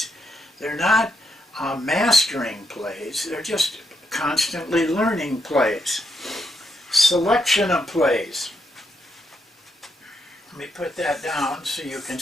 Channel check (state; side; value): normal; both; correlation 0.80